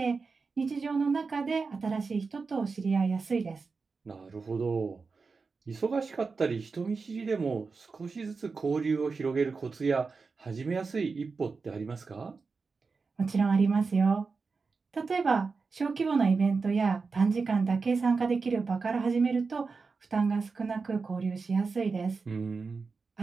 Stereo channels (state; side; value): quieter; left; 4.6 dB